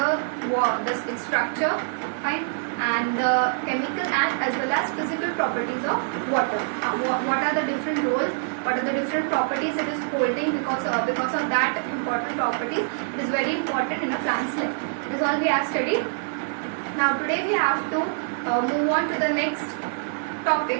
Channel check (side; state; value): left; silent; 62 dB below the other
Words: its structure, fine, and the chemical and as well as physical properties of water. What are the different roles? What are the different properties it is holding because of that important properties? It is very important in a plant's life. This is all we have studied. Now today we have to move on to the next